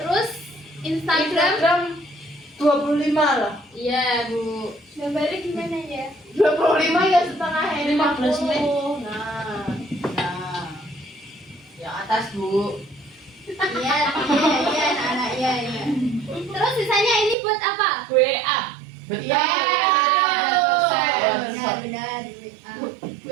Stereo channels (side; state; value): left; drops out; at 17.4 s